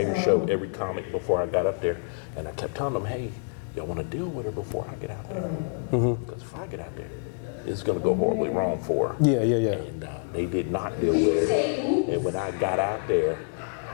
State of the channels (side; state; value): right; silent; digital silence